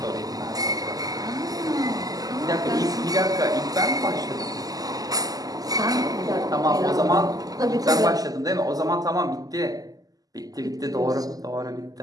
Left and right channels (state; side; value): late; left; 0.17 ms